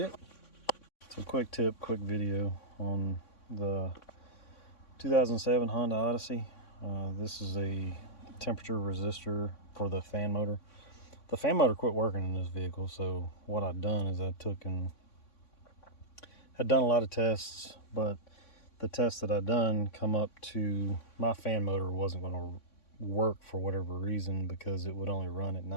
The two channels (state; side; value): late; right; 3.6 ms